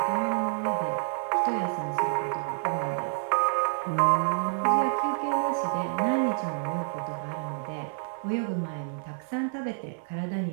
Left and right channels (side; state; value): left; silent; 59 dB below the other